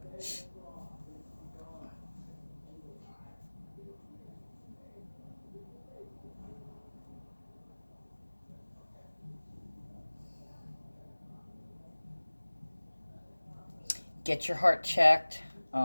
Get your heart checked.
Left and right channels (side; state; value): both; inverted; correlation -1.00